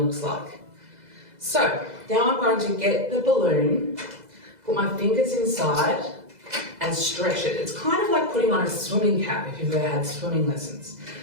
looks like. So now I'm going to get the balloon, put my fingers inside and stretch it. It's kind of like putting on a swimming cap if you've ever had swimming lessons.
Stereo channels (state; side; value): late; left; 2.0 ms